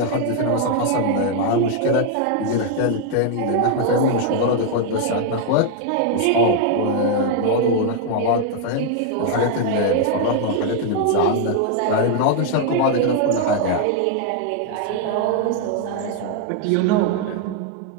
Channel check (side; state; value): both; different; correlation 0.00